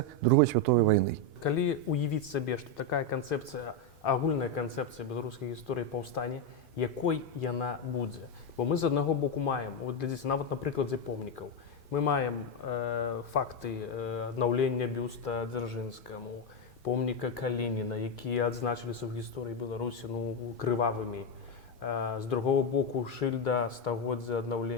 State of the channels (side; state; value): both; normal; correlation 0.06